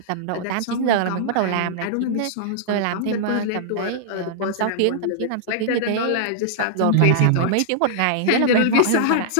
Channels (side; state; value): both; different; correlation -0.01